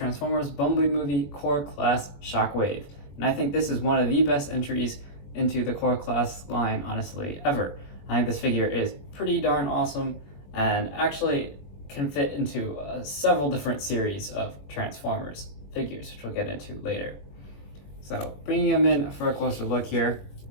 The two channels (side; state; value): right; late; 21 ms